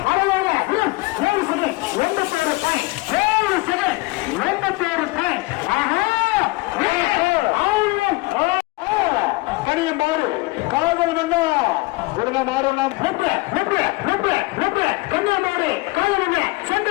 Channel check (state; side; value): quieter; right; 23.7 dB